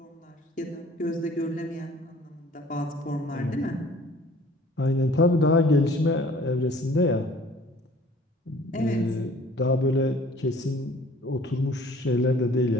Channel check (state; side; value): normal; both; correlation 0.52